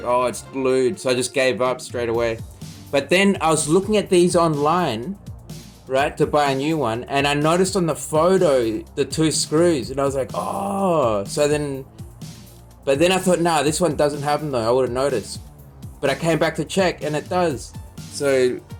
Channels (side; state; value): both; identical; correlation 1.00